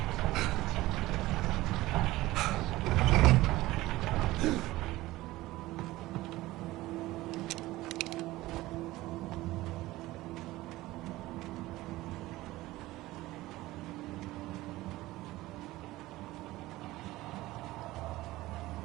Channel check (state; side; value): quieter; left; 17.8 dB